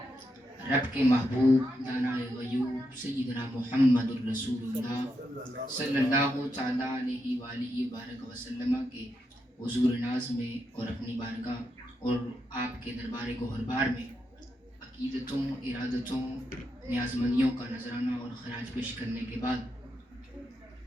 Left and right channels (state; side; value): normal; both; correlation 0.83